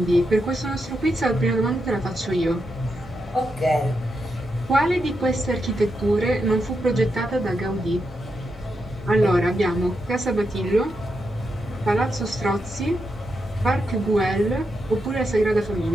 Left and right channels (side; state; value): both; normal; correlation 0.84